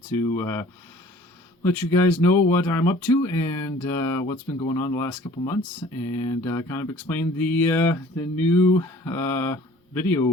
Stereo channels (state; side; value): normal; both; correlation 0.50